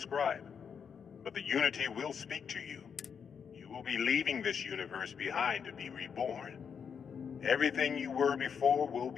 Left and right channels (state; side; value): quieter; right; 6.9 dB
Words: But the Unity will speak to you. You will be leaving this universe behind to be reborn. Everything you were before will